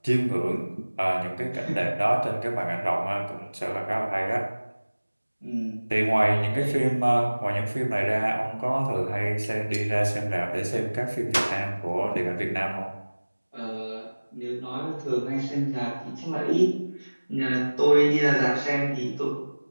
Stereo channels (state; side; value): inverted; both; correlation -1.00